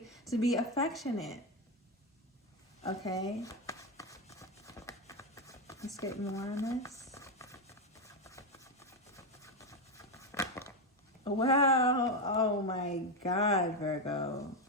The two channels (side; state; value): both; normal; correlation 0.08